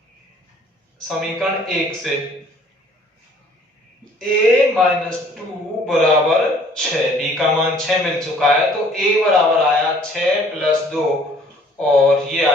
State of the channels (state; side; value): normal; both; correlation 0.57